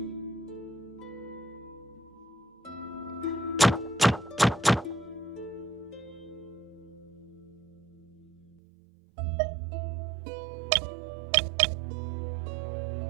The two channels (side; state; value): left; drops out; at 8.5 s